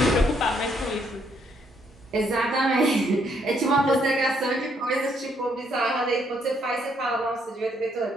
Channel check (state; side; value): normal; both; correlation 0.71